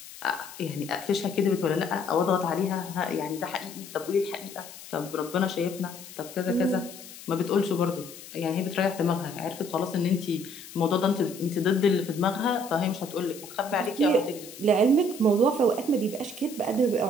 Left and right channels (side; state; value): left; noise; hiss, 16 dB below the sound